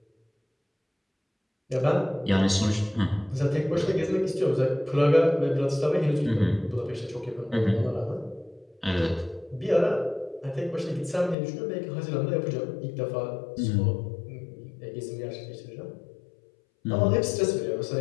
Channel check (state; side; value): drops out; right; at 11.4 s